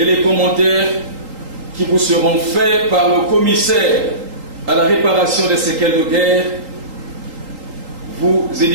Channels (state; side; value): late; left; 3.8 ms